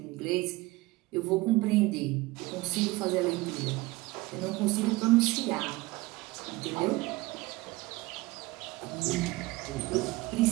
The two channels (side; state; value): left; quieter; 21.1 dB